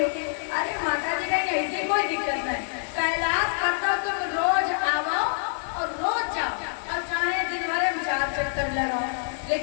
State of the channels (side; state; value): right; silent; 61 dB below the other